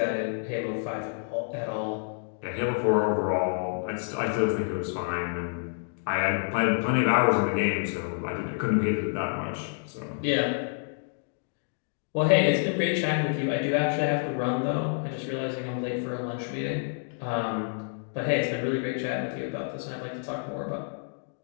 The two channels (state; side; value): silent; right; digital silence